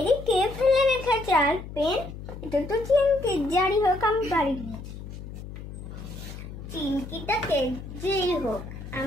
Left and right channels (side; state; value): left; noise; hum, 11 dB below the sound